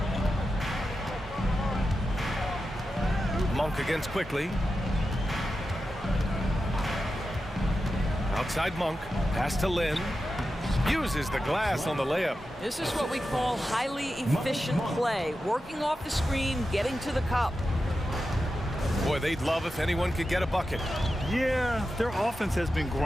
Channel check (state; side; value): normal; both; correlation 0.91